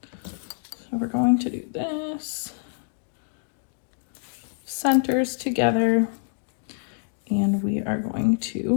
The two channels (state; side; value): silent; right; digital silence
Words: so we're going to do this, centers together, and we are going